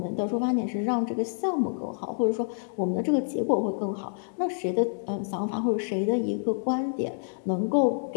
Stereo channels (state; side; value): silent; right; digital silence